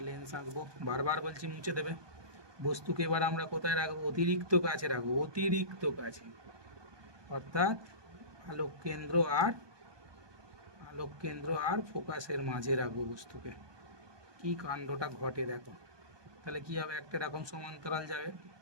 লেন্স আঁকবো। বারবার বলছি মুছে দেবে। বস্তুকে এবার আমরা কোথায় রাখবো? অতিরিক্ত কাছে রাখবো, অতিরিক্ত কাছে, অর্থাৎ আলোক কেন্দ্র আর ফোকাসের মাঝে রাখবো বস্তুকে। কি কাণ্ডটা ঘটে দেখো। তাহলে কি হবে? একটা এরকম সমান্তরাল যাবে,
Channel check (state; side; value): late; left; 1.2 ms